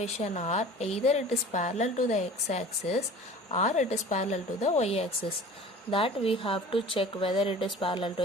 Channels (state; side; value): normal; both; correlation 0.42